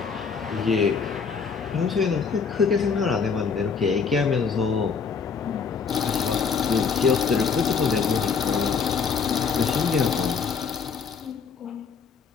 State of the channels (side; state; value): right; quieter; 5.8 dB